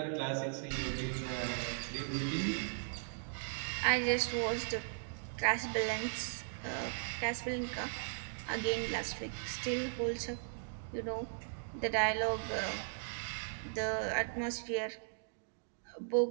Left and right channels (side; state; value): left; silent; digital silence